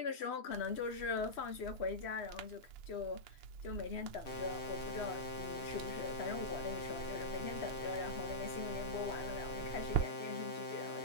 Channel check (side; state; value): right; late; 3.1 ms